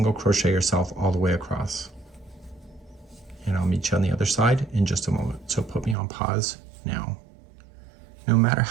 crochet yourself all the way across. And I'll meet you on the other side in just a moment. So put me on pause now. No matter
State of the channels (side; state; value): left; drops out; at 6.0 s